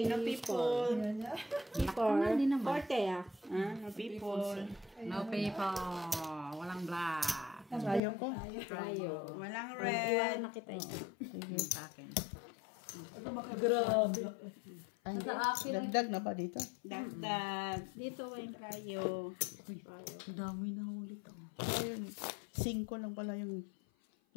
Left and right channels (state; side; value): drops out; right; at 8.0 s